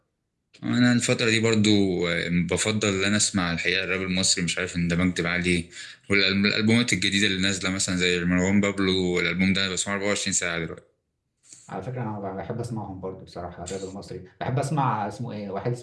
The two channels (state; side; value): identical; both; correlation 1.00